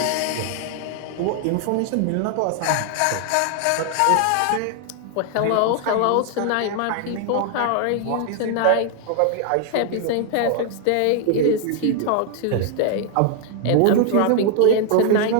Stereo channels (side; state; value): both; different; correlation 0.00